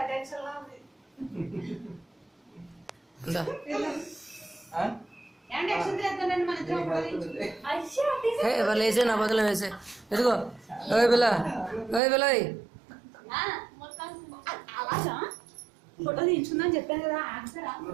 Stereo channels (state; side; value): drops out; left; at 12.0 s